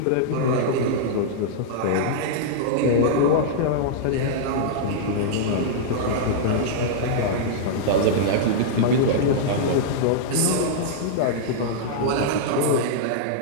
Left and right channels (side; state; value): both; different; correlation -0.02